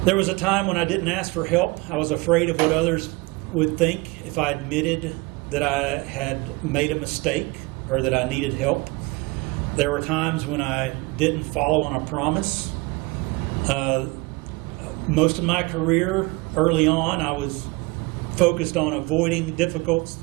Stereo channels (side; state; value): left; quieter; 24.6 dB